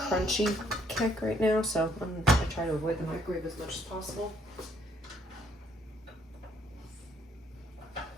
kick right now, so I'm gonna try to avoid the microwave as much as possible.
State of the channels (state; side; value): normal; both; correlation 0.67